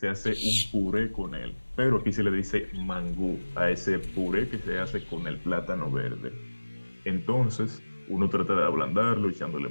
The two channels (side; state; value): both; inverted; correlation -1.00